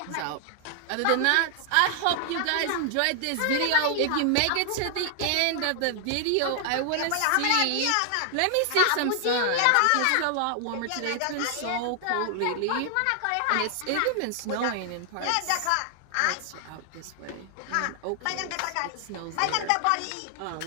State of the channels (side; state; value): both; different; correlation 0.00